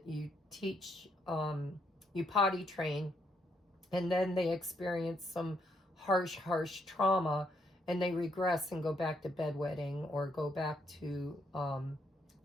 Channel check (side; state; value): both; normal; correlation 0.75